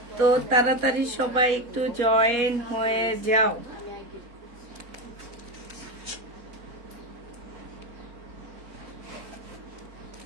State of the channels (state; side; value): late; left; 4.2 ms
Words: তো তাড়াতাড়ি সবাই একটু জয়েন হয়ে যাও।